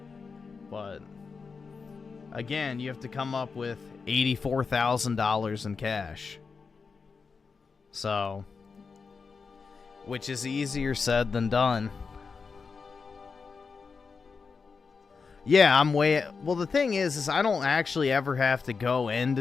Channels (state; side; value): quieter; right; 5.1 dB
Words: But again, you have to come up with $84,000 in cash. So, which is easier said than done. Yeah, I'm way... Well, the thing is I don't actually ever have to go